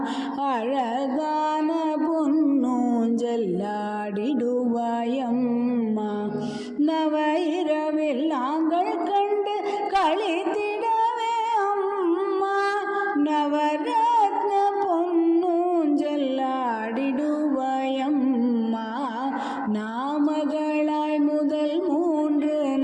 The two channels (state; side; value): identical; both; correlation 1.00